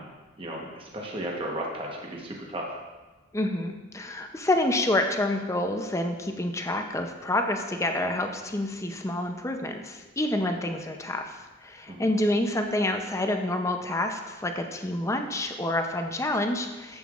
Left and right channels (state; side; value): normal; both; correlation 0.53